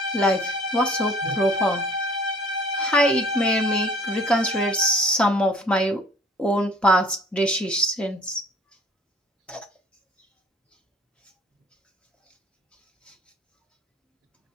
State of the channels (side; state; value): both; normal; correlation 0.52